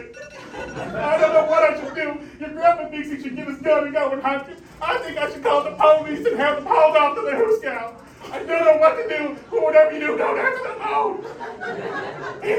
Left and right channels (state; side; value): identical; both; correlation 1.00